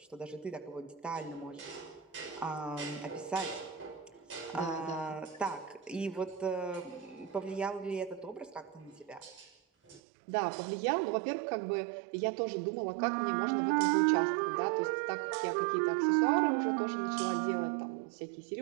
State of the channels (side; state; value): left; drops out; at 10.0 s